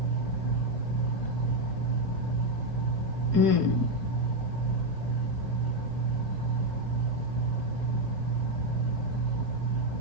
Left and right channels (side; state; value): left; late; 4.6 ms